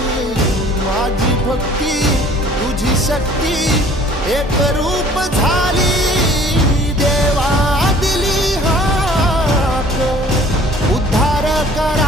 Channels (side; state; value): both; normal; correlation 0.51